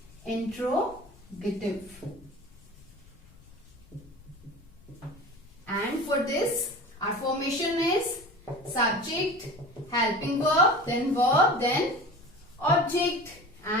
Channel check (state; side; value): noise; left; rumble, 24 dB below the sound